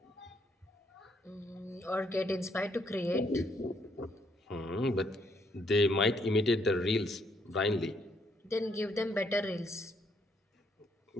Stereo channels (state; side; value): normal; both; correlation 0.71